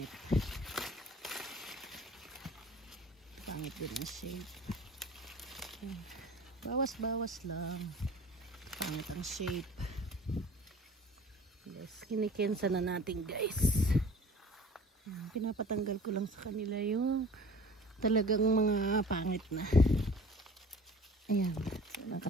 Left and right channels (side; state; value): both; normal; correlation 0.45